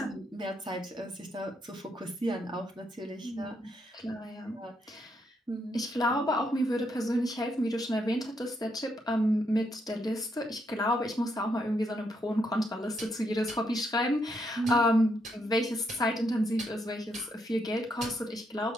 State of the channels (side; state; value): both; normal; correlation 0.77